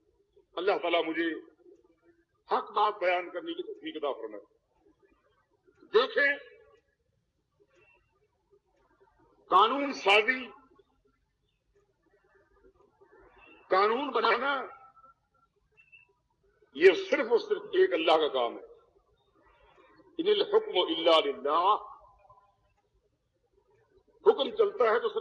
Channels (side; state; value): both; identical; correlation 1.00